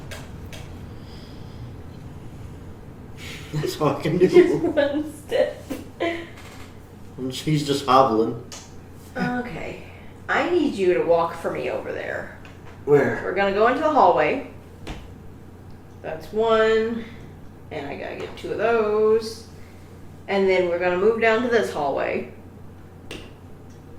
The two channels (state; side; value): identical; both; correlation 1.00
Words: That's all I can Just do. one step. She's just hobbling. Okay. I need you to walk for me over there. Where? We're gonna go into the hallway. That's one. And I gotta get 2 of those. And then we're gonna move down to this hallway.